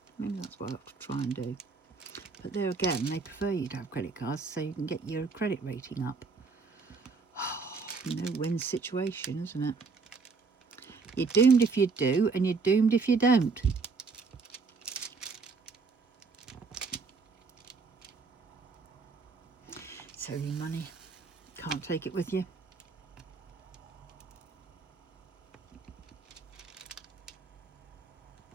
Maybe that's what I have to try and do. But there again, they prefer you to have credit cards so you can get your credit rating up. No-win situation, isn't it? You're doomed if you do, and you're doomed if you don't. So your money, can't take it with you.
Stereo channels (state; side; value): quieter; left; 4.6 dB